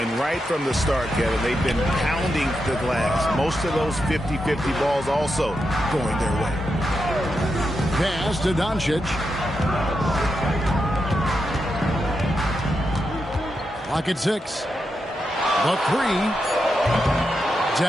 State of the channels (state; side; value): normal; both; correlation 0.86